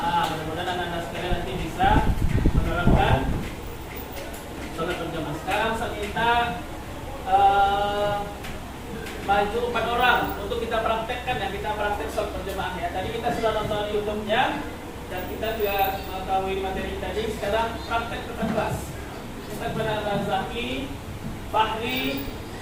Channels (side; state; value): both; identical; correlation 1.00